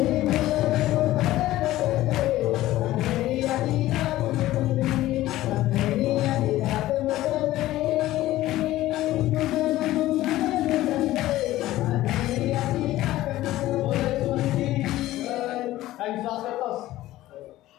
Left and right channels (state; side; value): quieter; right; 15.7 dB